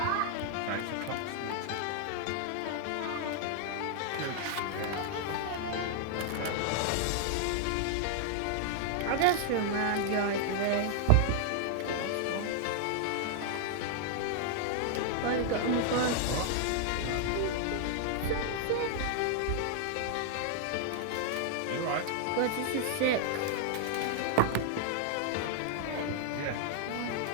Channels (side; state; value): both; different; correlation 0.00